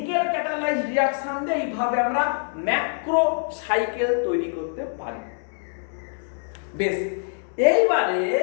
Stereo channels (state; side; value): silent; right; 62 dB below the other